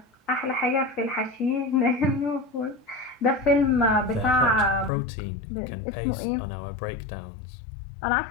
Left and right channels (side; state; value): right; drops out; at 4.9 s